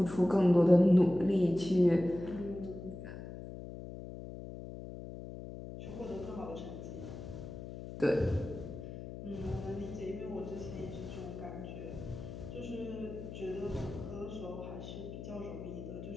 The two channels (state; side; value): noise; left; hum, 10 dB below the sound